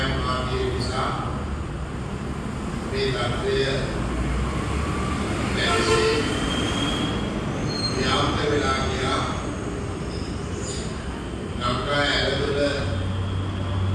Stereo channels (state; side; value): identical; both; correlation 1.00